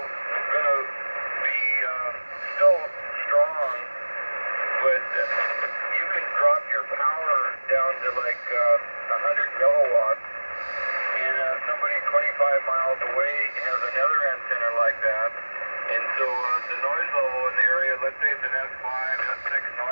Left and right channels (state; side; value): inverted; both; correlation -1.00